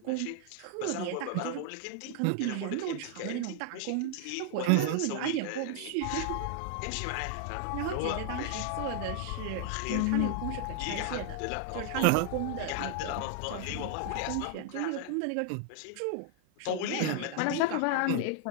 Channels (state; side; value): different; both; correlation 0.00